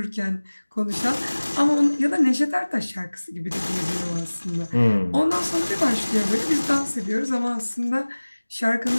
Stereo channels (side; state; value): both; inverted; correlation -1.00